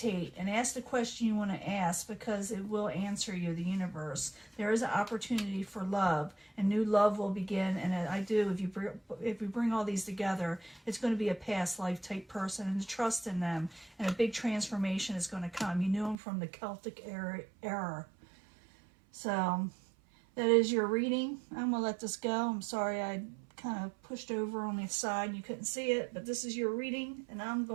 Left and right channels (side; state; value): left; drops out; at 16.2 s